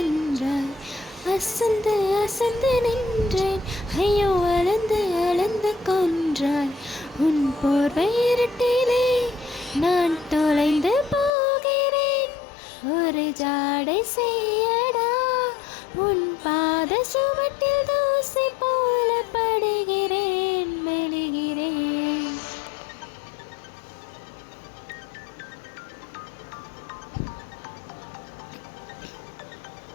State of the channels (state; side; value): drops out; right; at 11.3 s